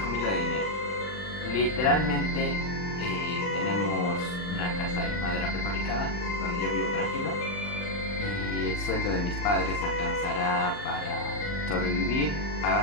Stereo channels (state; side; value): late; right; 39 ms